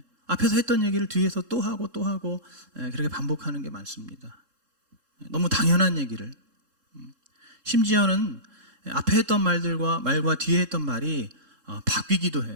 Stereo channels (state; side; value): late; left; 3.7 ms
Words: 앞에서 했던 얘기를 뒤에서 또 하고 또 하고 그렇게 반복하는 게 많습니다. 너무 당연한 얘기를 심지어는 앞에 했던 말과 뒤에 했던 말이 바뀌기도